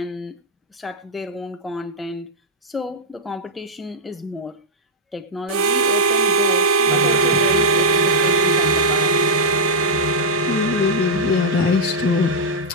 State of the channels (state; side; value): normal; both; correlation -0.02